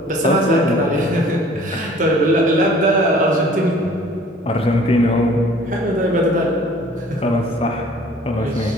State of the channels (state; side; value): normal; both; correlation 0.51